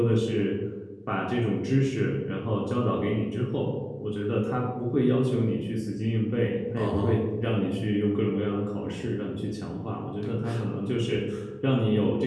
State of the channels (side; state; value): both; identical; correlation 1.00